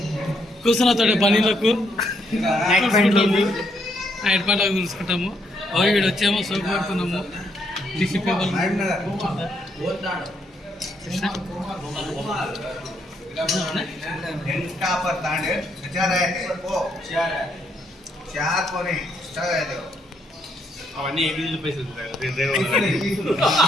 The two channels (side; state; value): both; normal; correlation 0.74